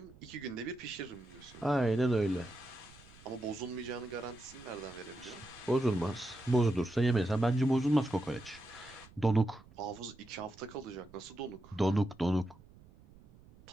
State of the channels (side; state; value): right; noise; rumble, 23 dB below the sound